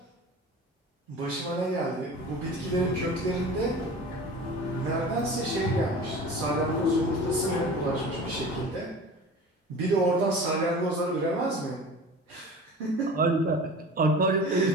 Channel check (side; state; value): both; normal; correlation 0.38